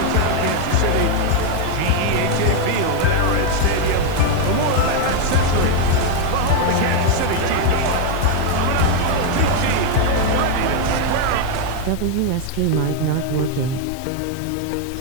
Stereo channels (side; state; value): both; different; correlation 0.01